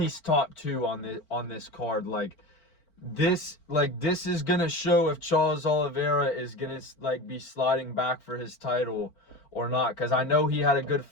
top 2 on this card. This is gonna show if Charles Oliveira is gonna be sliding back for his title or not, because I know he had a good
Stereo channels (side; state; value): right; late; 4.4 ms